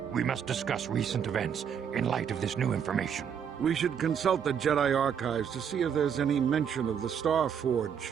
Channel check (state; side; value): quieter; left; 7.8 dB